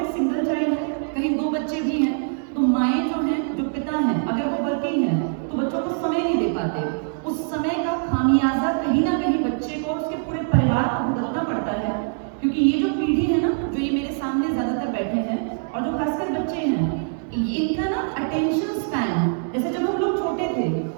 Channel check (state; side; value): silent; left; digital silence